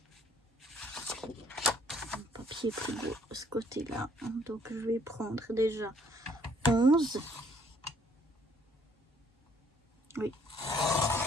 un papier plus beau de ce côté là, donc je vais prendre déjà 11, oui,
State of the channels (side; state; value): both; normal; correlation 0.63